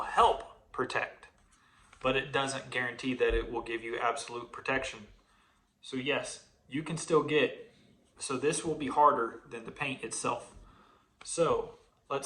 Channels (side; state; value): both; identical; correlation 1.00